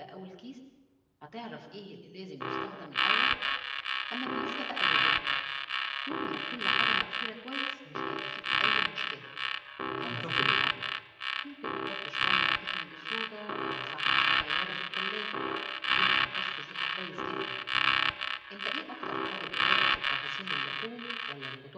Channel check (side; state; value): both; identical; correlation 1.00